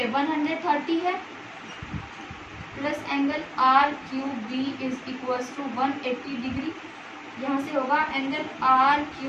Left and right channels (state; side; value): identical; both; correlation 1.00